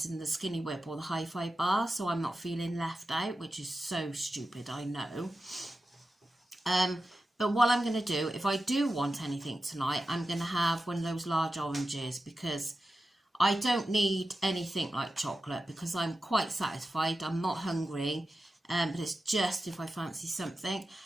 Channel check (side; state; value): both; normal; correlation 0.92